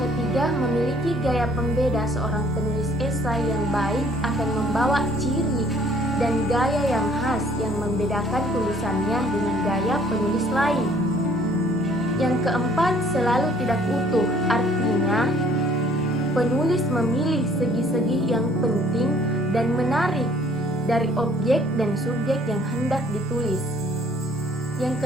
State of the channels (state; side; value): normal; both; correlation 0.59